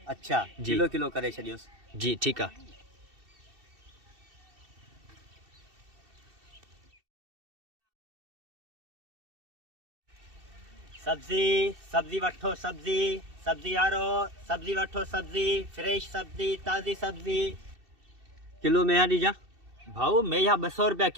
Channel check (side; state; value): left; late; 2.7 ms